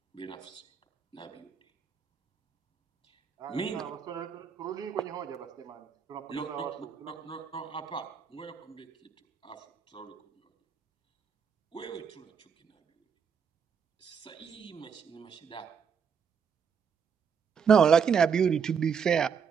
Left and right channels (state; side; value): quieter; left; 6.7 dB